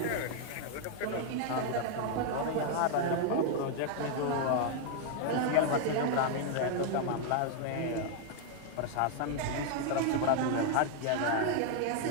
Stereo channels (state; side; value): different; both; correlation 0.00